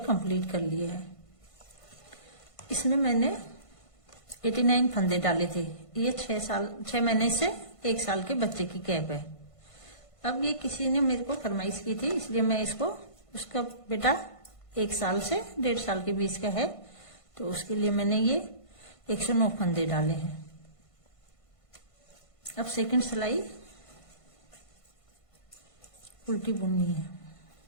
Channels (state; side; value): late; right; 1.5 ms